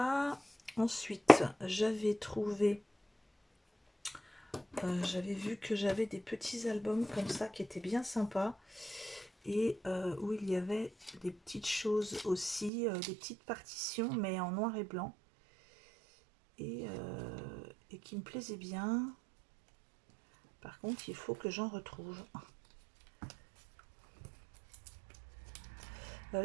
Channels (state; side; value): drops out; left; at 12.7 s